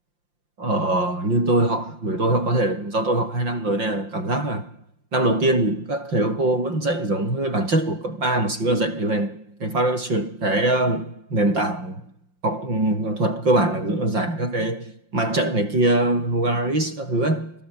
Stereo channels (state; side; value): late; left; 5.7 ms